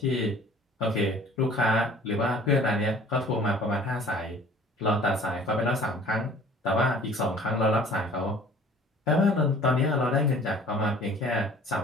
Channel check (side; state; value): both; normal; correlation 0.50